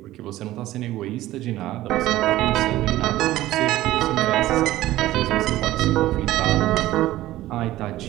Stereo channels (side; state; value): left; quieter; 15.6 dB